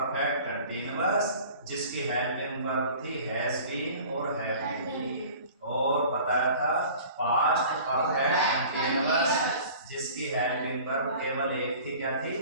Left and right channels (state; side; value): inverted; both; correlation -0.45